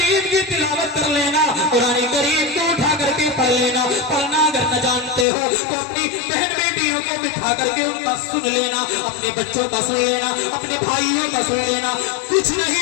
کی تلاوت کر لینا، قرآن کریم کو اٹھا کر کے پڑھ لینا۔ پڑھنا اگر نہ جانتے ہو تو اپنی بہن بیٹیوں کو بٹھا کر کے ان کا سن لینا، اپنے بچوں کا سن لینا، اپنے بھائیوں کا سن لینا۔ کچھ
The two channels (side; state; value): right; drops out; at 5.2 s